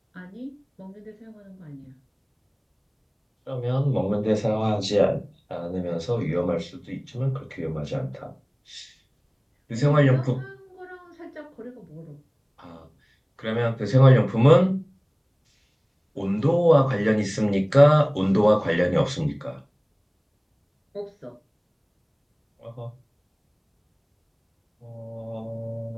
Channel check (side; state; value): both; identical; correlation 1.00